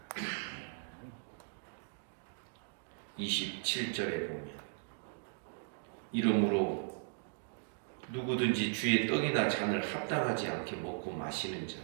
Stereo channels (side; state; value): left; silent; digital silence